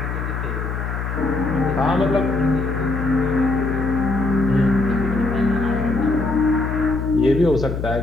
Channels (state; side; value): noise; left; hum, 4 dB below the sound